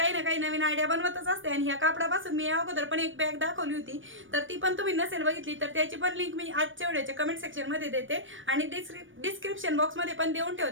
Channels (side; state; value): left; late; 0.57 ms